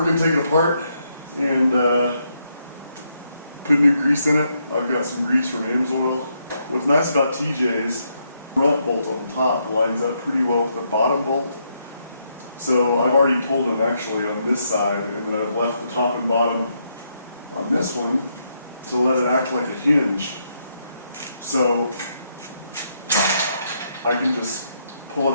going to take it apart and put new grease in it. I've got some grease from Amsoil. What's nice about TJ's front bolt on the top lines up pretty well with the bottom bolt. So I've already pulled them actually on this side, and then I've left the top and bottom on this one to let it act like a hinge. So I can just pull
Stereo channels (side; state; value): both; inverted; correlation -0.77